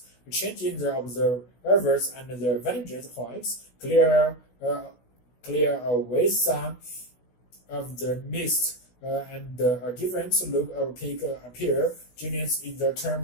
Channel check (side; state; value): right; late; 16 ms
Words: Changing the observers and their vantage points clear away some of the mist and a different look of peak appear. Genius is the